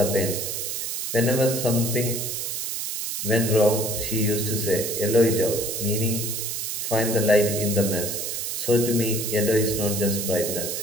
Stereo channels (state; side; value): noise; right; hiss, 3 dB below the sound